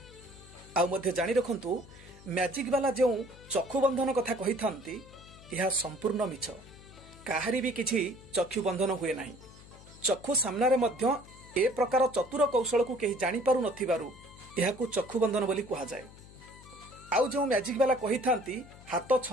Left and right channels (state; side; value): noise; left; hum, 20 dB below the sound